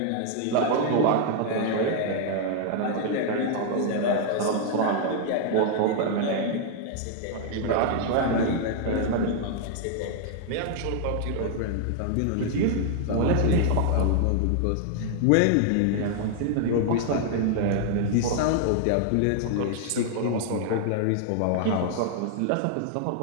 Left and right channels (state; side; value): different; both; correlation 0.00